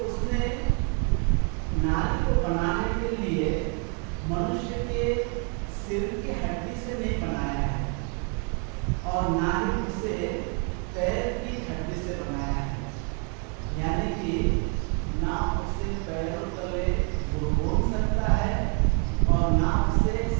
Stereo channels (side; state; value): left; quieter; 38.5 dB